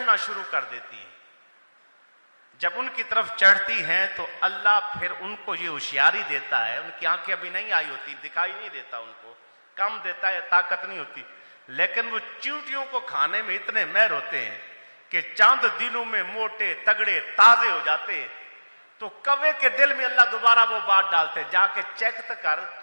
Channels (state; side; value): inverted; both; correlation -1.00